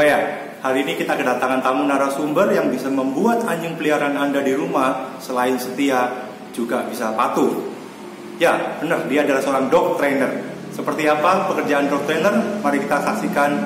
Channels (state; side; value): identical; both; correlation 1.00